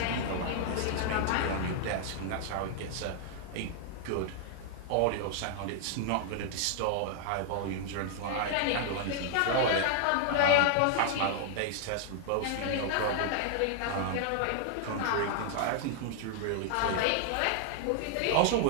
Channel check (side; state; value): both; different; correlation 0.00